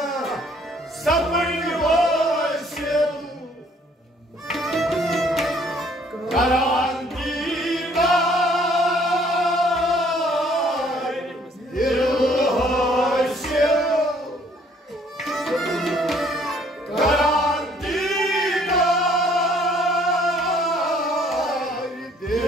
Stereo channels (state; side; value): normal; both; correlation 0.61